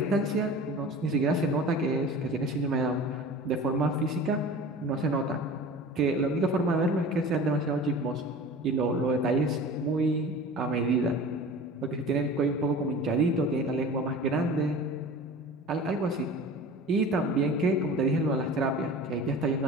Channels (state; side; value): normal; both; correlation 0.39